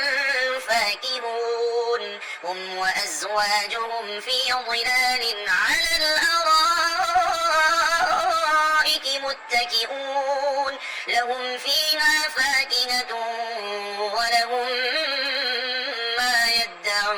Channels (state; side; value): identical; both; correlation 1.00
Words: فاكهون هم وأزواجهم في ظلال على الأرائك الأرائك متكئون لهم فيها فاكهة ولهم ما